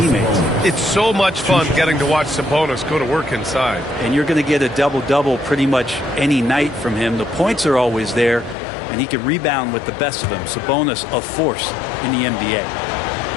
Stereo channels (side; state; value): right; drops out; at 8.6 s